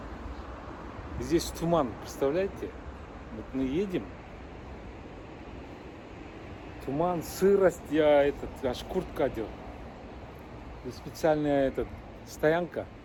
Здесь туман, представляете? Вот мы едем. Туман, сырость, аж куртка одел. Здесь специальная стоянка,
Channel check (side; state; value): both; identical; correlation 1.00